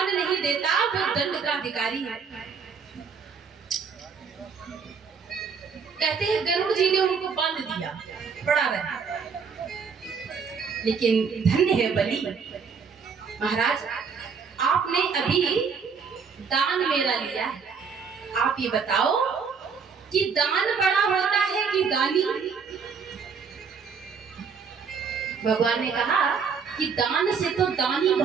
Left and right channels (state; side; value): quieter; left; 5.9 dB